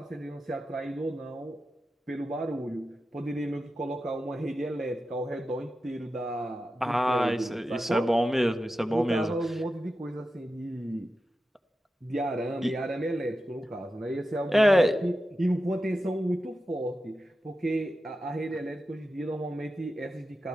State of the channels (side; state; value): both; normal; correlation 0.91